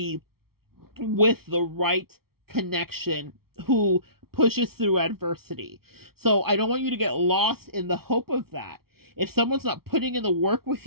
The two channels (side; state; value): left; late; 0.94 ms